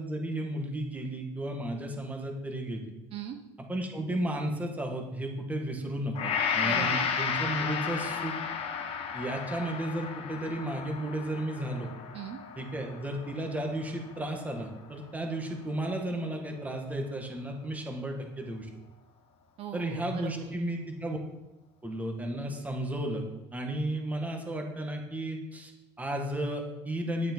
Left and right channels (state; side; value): normal; both; correlation 0.52